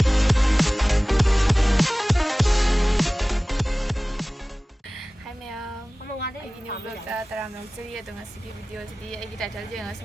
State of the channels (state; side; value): normal; both; correlation 0.98